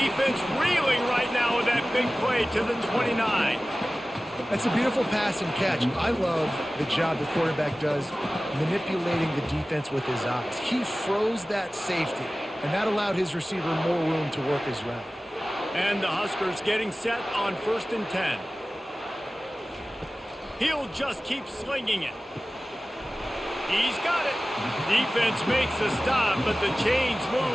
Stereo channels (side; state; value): both; normal; correlation 0.97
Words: reeling right now with that big play to the 29. That's a beautiful pass and catch. I love the job the quarterback does manipulating the defense with his eyes. He froze that safety, and that allowed his receiver more room to work his route. And the Huskers getting set on 1st and 10. He'll just keep slinging it. He's got it. Defense makes a stop, but the chains